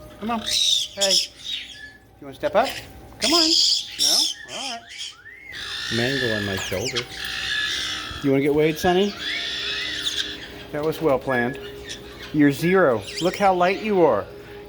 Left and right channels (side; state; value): both; identical; correlation 1.00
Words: Come on. Hey. You want to step up? Come on. No? Alright. Mango on my shoulder. You want to get weighed, Sunny? That was well planned. You're 0. Look how light you are.